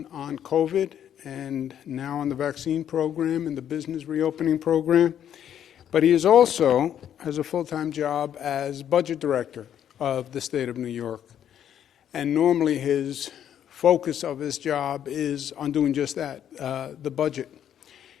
on COVID and now on the vaccine program and the business reopening program. But he is also has a full-time job as budget director of the state of New York. And normally his focus of his job is on doing just that, the budget.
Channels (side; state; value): right; quieter; 9.8 dB